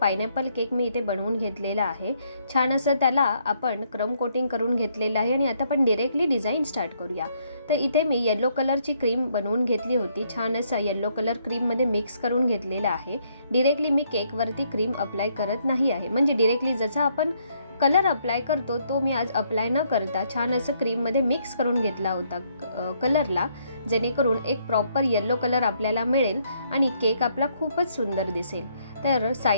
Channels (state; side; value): inverted; both; correlation -0.71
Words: केक मी इथे बनवून घेतलेला आहे। छान असं त्याला आपण क्रम कोटिंग करून घेतलेलं आहे आणि आता आपण डायरेक्टली डिझाईन स्टार्ट करूया। तर इथे मी येलो कलरची क्रीम बनवून घेतली होती। छान असं येलो कलर क्रीममध्ये मिक्स करून घेतलेला आहे। डायरेक्टली मी केकवरती क्रीम अप्लाय करत नाही आहे, म्हणजे डायरेक्टली जसा आपण कलर अप्लाय करतो तो मी आज अप्लाय न करता छान असं क्रीममध्ये मिक्स करून घेतला होता कलरला, जेणेकरून एक प्रॉपर येलो कलर आपल्याला मिळेल आणि केक आपला खूपच सुंदर दिसेल। तर